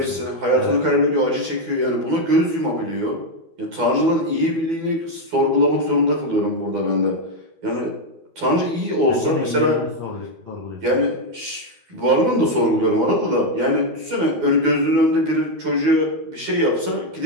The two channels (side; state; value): left; late; 12 ms